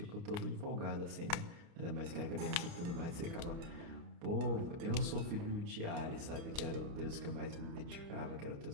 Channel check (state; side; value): late; left; 29 ms